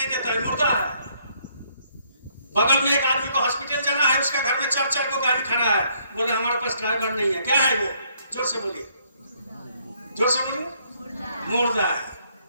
देता है, मुर्दा है। बगल में एक आदमी को हॉस्पिटल जाना है, उसका घर में 4 को गाड़ी खड़ा है, बोले हमारे पास ड्राइवर नहीं है। क्या है वो? जोर से बोलिए, जोर से बोलिए, मुर्दा है।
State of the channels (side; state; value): both; inverted; correlation -0.68